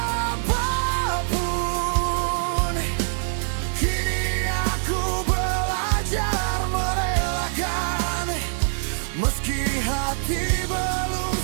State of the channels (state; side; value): silent; left; 60 dB below the other